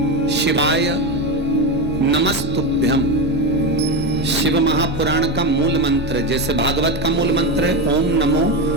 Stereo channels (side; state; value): both; normal; correlation 0.15